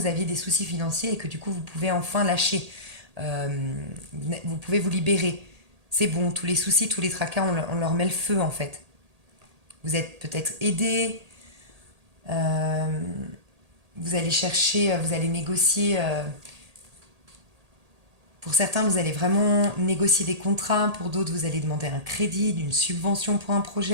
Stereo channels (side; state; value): left; late; 1.8 ms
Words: aviez des soucis financiers et que du coup, vous pouvez enfin lâcher. Vous pouvez vous libérer. C'est bon, tous les soucis, tous les tracas, on leur met le feu, en fait. Vous êtes peut-être aidé. Vous allez chercher, vous allez négocier. Pour certains, vous allez vraiment négocier des contrats. Pour d'autres, vous allez demander un crédit, une subvention pour un